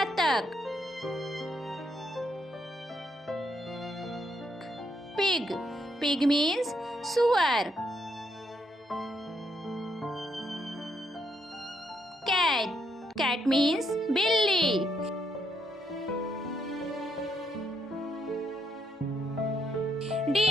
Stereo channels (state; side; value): normal; both; correlation 0.76